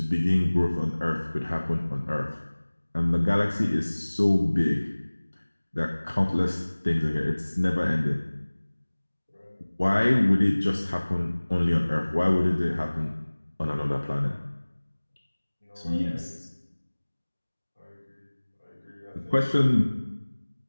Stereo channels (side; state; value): both; inverted; correlation -1.00